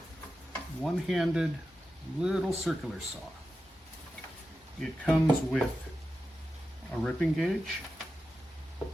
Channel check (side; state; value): both; normal; correlation 0.91